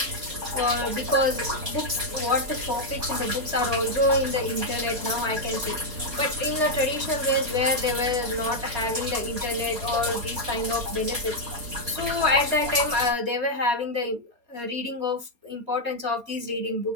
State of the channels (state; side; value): late; left; 4.3 ms